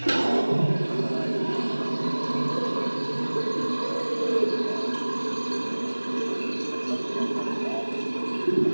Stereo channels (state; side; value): inverted; both; correlation -1.00